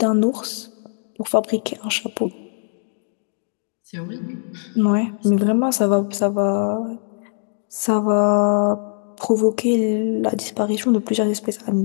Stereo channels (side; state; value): right; silent; 60 dB below the other